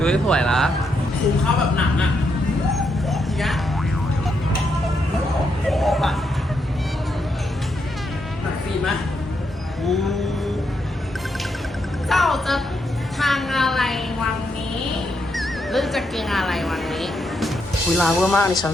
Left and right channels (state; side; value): normal; both; correlation 0.80